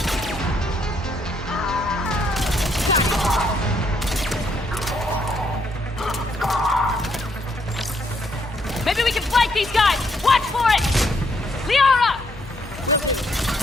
Maybe we can flank these guys! Watch for it! Liara!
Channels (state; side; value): normal; both; correlation 0.73